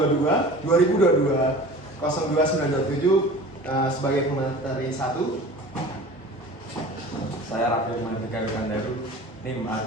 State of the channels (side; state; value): both; normal; correlation 0.40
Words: 2022 02927 sebagai pemateri 1. Saya Rafael Mandeka Wikandaru, NIM